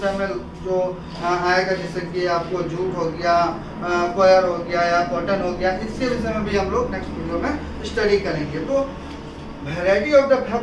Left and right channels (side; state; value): both; identical; correlation 1.00